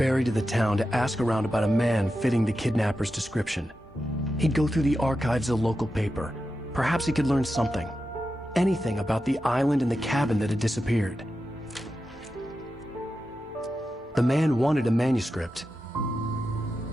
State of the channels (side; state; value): both; normal; correlation 0.90